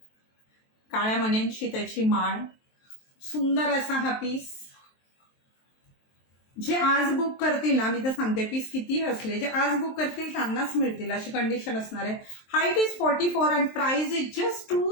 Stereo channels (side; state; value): right; late; 23 ms